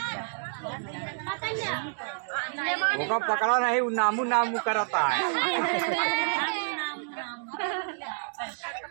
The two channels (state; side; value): silent; left; digital silence